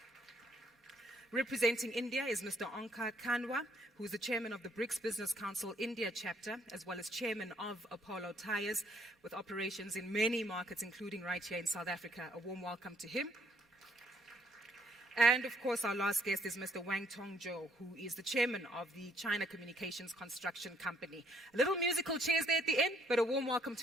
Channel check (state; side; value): normal; both; correlation 0.66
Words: Representing India is Mr. Onkar Kanwa, who is the Chairman of the BRICS Business Council India chapter, as well as Chairman of Apollo Tyres, with operations in many markets, including right here in South Africa. A warm welcome to him. And, of course, our last guest is Mr. Wang Tongzhou, who is the chairman of the China Communications Construction Company. A little musical chairs there at the end, but a warm welcome